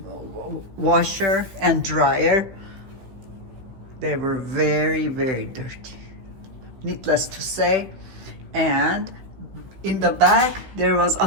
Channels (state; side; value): late; left; 15 ms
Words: washer and dryer. They were very, very dirty, needless to say. And in the back there was